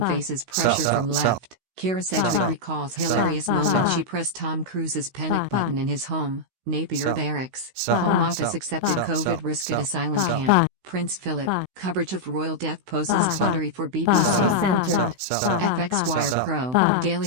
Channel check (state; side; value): late; left; 16 ms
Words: faces pressure Sell. from Sell. left. Kira Sedgwick Sell. recalls Sell. hilarious Sell. moment Sell. she pressed Tom Cruise's panic Sell. button in his home, Napier Sell. Barracks. Sell. Home Office Sell. accepted Sell. COVID Sell. risk at Sell. asylum Sell. camp. Prince Philip. Coverage of royal death poses Sell. quandary for BBC. Recentered. Sell. FX Wire Sell. Pro, Sell.